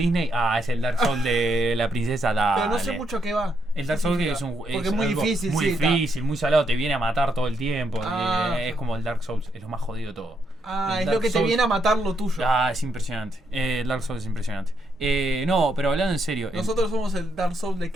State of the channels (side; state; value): both; normal; correlation 0.77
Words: es el Dark Souls de la princesa, dale. Pero no sé mucho qué va. El Dark Souls que es un Porque es muy algo difícil, muy sí, está. difícil, muy salado, te viene a matar todo el tiempo. Es Ah. como el Dark Souls, es lo más jodido de todo. Ah, El es Dark lo que te Souls- viene a matar lo tuyo. Es impresionante. El Dark Souls es impresionante. No, pero hablando en serio. Nosotros somos el Dark Souls de